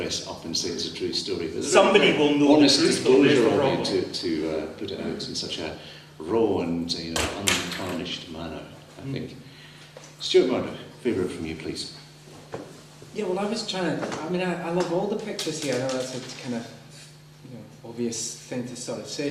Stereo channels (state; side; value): identical; both; correlation 1.00